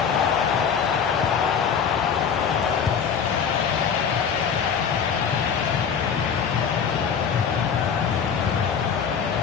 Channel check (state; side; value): quieter; right; 7.0 dB